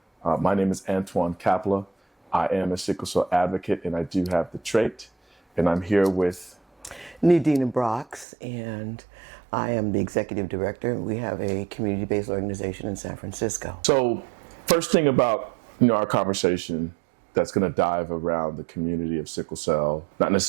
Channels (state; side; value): drops out; left; at 8.2 s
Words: My name is Antoine Kapla. I am a sickle cell advocate, and I do have the trait. And I'm here with NeDina, and I am the executive director. We have a community-based organization in San Francisco. So, first thing about our conversation that's going to dive around the community of sickle cell, not